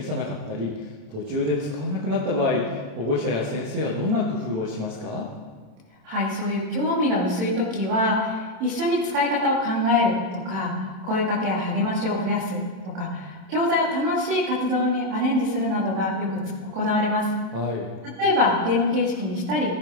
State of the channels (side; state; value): left; late; 27 ms